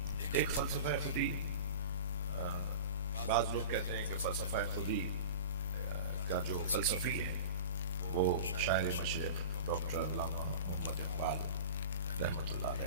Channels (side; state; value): both; inverted; correlation -0.34